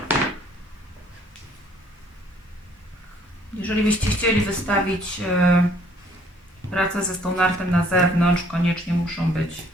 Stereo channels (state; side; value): normal; both; correlation 0.61